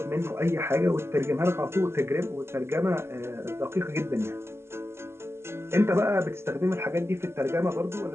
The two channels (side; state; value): left; late; 0.12 ms